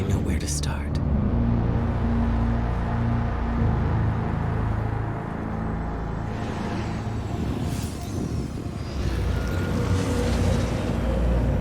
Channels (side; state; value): both; identical; correlation 1.00